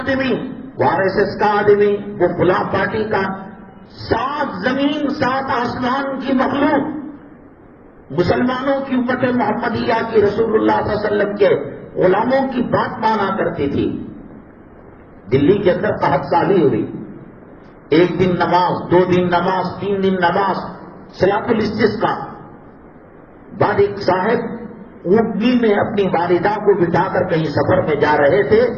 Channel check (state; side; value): identical; both; correlation 1.00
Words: وہ آر ایس ایس کا آدمی، وہ فلاں پارٹی کا۔ 7 زمین 7 آسمان کی مخلوق مسلمانوں کی امت محمدیہ کی، رسول اللہ صلی اللہ علیہ وسلم کے غلاموں کی بات مانا کرتی تھی۔ دلی کے اندر قحط سالی ہوئی، 1 دن نماز، 2 دن نماز، 3 دن نماز، صلاۃ الاستسقاء۔ بعد ایک صاحب اونٹنی میں اپنی والدہ کو بٹھا کر کہیں سفر میں جا رہے تھے،